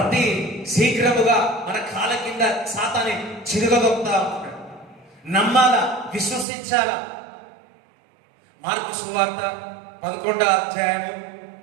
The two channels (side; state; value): left; drops out; at 6.5 s